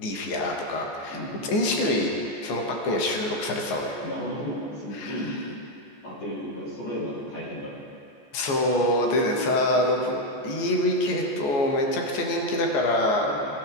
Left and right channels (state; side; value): late; right; 14 ms